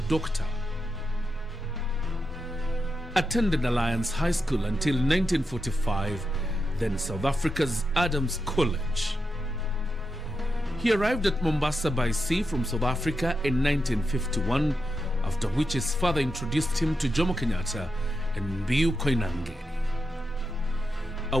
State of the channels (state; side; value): normal; both; correlation 0.87